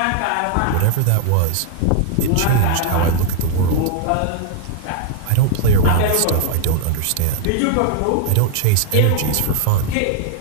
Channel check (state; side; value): different; both; correlation -0.01